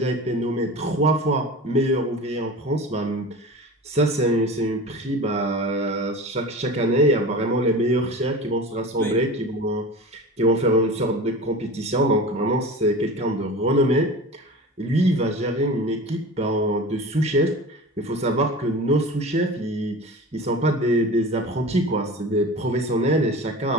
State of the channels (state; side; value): normal; both; correlation 0.34